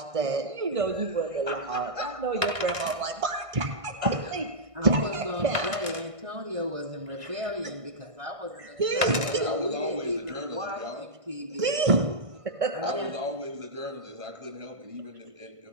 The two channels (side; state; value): left; late; 1.5 ms